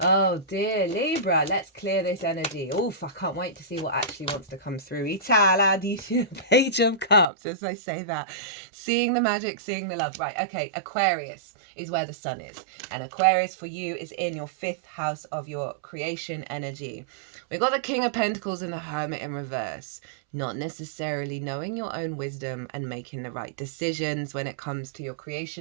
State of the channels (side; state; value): left; drops out; at 7.2 s